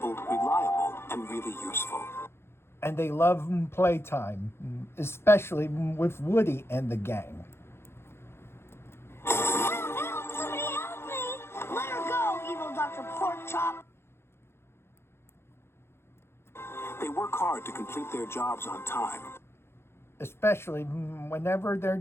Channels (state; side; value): late; right; 0.12 ms